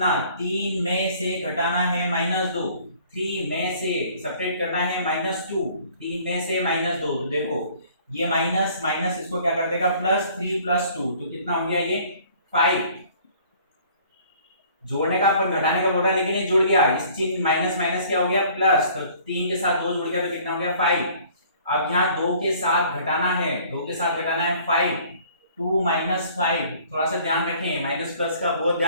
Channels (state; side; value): inverted; both; correlation -0.54